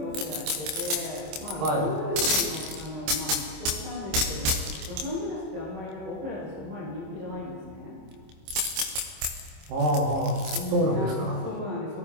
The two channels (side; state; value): left; late; 26 ms